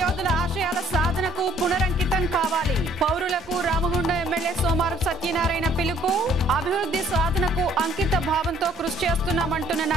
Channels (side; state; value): both; normal; correlation 0.61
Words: యోధుల ఆశయాల సాధనకు పునరంకితం కావాలి. పౌరులకు రామగుండం ఎమ్మెల్యే సోమారపు సత్యనారాయణ పిలుపు. అభివృద్ధి సాధనకు అంకిత భావంతో కృషి చేస్తున్నామంటున్న